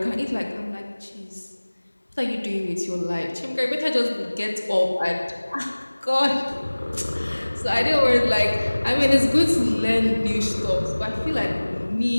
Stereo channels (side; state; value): both; inverted; correlation -1.00